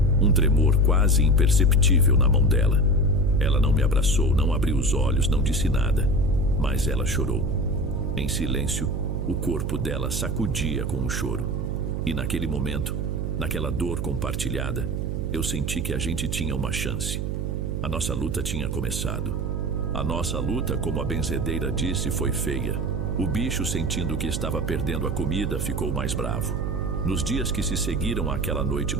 um tremor quase imperceptível na mão dela. Ela não me abraçou, não abriu os olhos, não disse nada, mas ela chorou. Em silêncio, o corpo dela sacudia com o choro. E naquele momento, naquela dor compartilhada, eu senti que a gente tinha uma chance. A nossa luta tinha começado. A nossa luta, como a benzedeira disse, foi feia. O bicho, sentindo que estava perdendo a comida, ficou mais bravo. Nos dias que se seguiram àquela noite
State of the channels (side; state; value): right; noise; hum, 1 dB below the sound